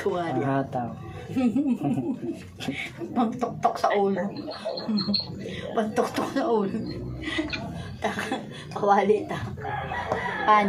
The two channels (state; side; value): identical; both; correlation 1.00